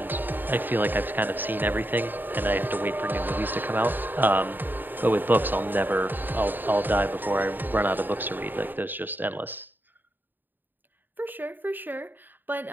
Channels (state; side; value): late; left; 0.091 ms